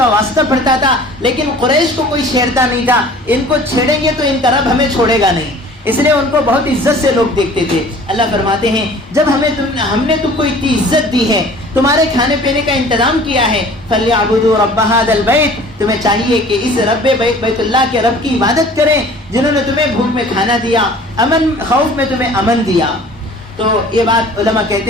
واسطہ پڑتا تھا, لیکن قریش کو کوئی چھیڑتا نہیں تھا. ان کو چھیڑیں گے تو ان کا رب ہمیں چھوڑے گا نہیں, اس لیے ان کو بہت عزت سے لوگ دیکھتے تھے. اللہ فرماتے ہیں جب ہم نے تم کو اتنی عزت دی ہے, تمہارے کھانے پینے کا انتظام کیا ہے, فَلْيَعْبُدُوا رَبَّ هَذَا الْبَيْتِ, تمہیں چاہیے کہ اس رب بیت اللہ کے رب کی عبادت کریں جنہوں نے تمہیں بھوک میں کھانا دیا, خوف میں تمہیں امن دیا. تو یہ بات علماء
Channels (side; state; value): both; normal; correlation 0.48